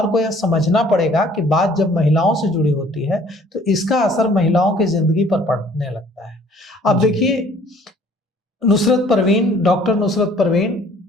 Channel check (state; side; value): normal; both; correlation 0.56